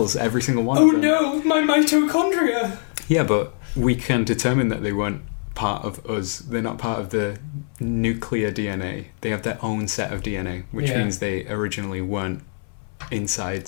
every single one. Oh no, my mitochondria! Yeah, but we can determine that they weren't part of us. They're not part of the nuclear DNA. They have their own set of DNA, which means they originally weren't inside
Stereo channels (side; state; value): right; silent; 64 dB below the other